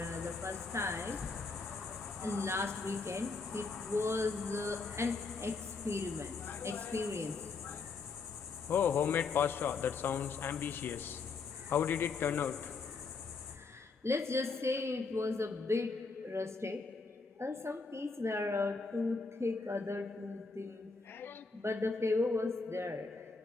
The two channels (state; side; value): quieter; right; 4.4 dB